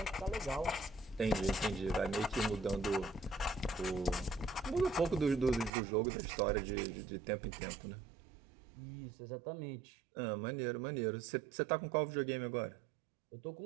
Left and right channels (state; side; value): drops out; left; at 5.7 s